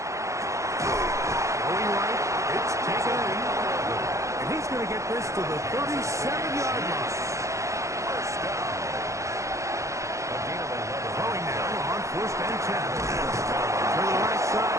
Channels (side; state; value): left; late; 0.15 ms